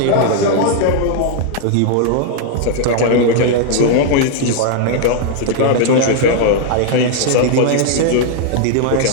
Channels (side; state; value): both; different; correlation 0.00